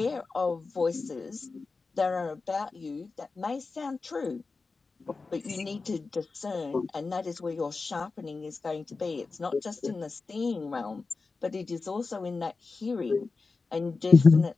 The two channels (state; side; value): quieter; right; 4.1 dB